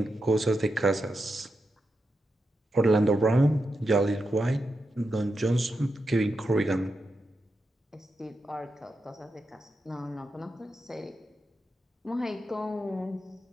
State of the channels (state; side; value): normal; both; correlation 0.87